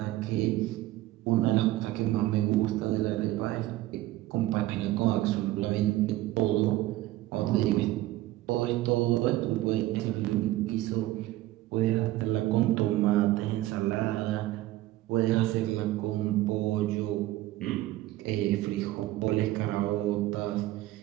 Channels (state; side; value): quieter; left; 16.3 dB